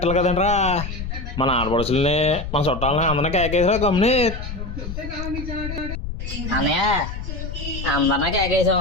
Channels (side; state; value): left; noise; rumble, 7 dB below the sound